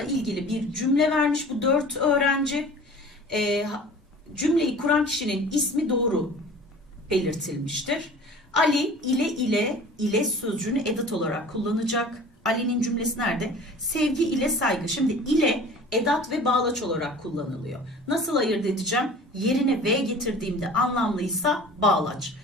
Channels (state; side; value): normal; both; correlation 0.43